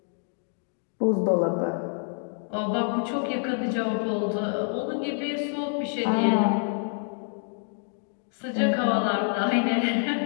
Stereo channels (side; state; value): right; silent; 60 dB below the other